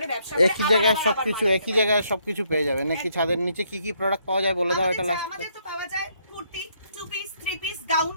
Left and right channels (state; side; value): inverted; both; correlation -0.71